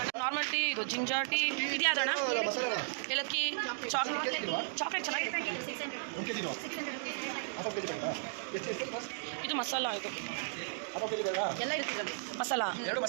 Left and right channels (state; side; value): silent; left; digital silence